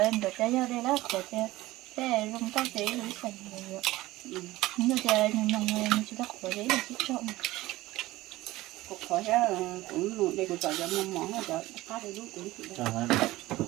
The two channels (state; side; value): quieter; left; 17.9 dB